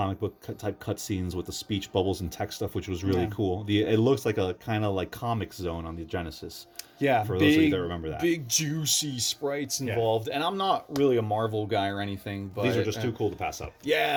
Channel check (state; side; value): identical; both; correlation 1.00